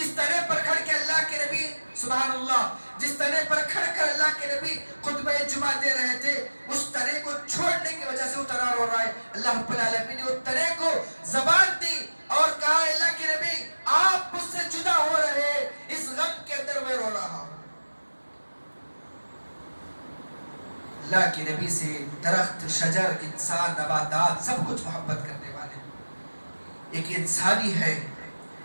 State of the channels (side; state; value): both; inverted; correlation -1.00